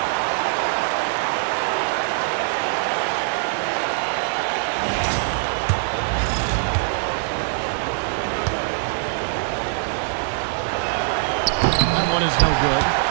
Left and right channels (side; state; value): left; silent; digital silence